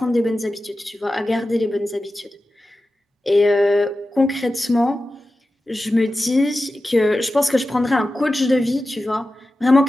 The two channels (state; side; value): normal; both; correlation 0.93